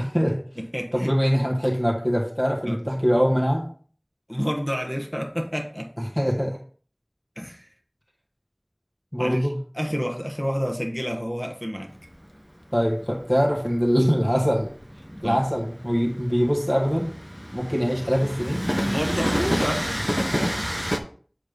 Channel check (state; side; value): identical; both; correlation 1.00